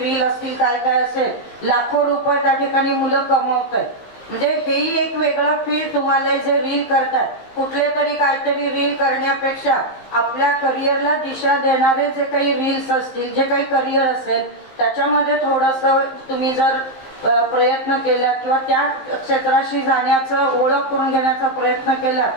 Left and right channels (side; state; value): right; late; 15 ms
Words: असतील काय काय असेल, लाखो रुपये त्या ठिकाणी मुलं कमवत आहेत. म्हणजे हेही एक वेगळं फील्ड तुम्हाला जे रील करतात, कुठले तरी काहीतरी रील करण्यापेक्षा आपल्या करिअरला दिशा देणारे जे काही रील्स असतील, जे काही करिअर असेल त्याच्यामध्ये थोडंसं तुम्ही जर प्रयत्न केला किंवा त्या क्षेत्राशी जाण्याचं ओळख करून घेण्याचा प्रयत्न केला